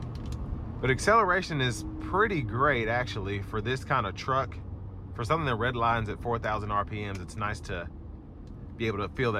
But acceleration is pretty great, actually, for this kind of truck. For something that redlines at 4,000 RPMs, it's nice to be able to feel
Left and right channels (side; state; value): both; identical; correlation 1.00